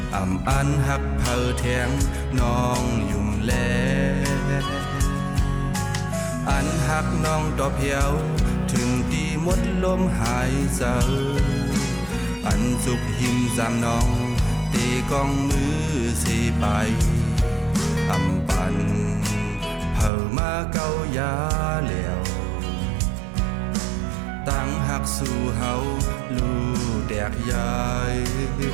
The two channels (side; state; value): left; drops out; at 20.1 s